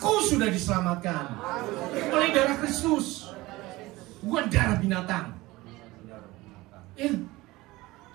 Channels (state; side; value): quieter; left; 19.9 dB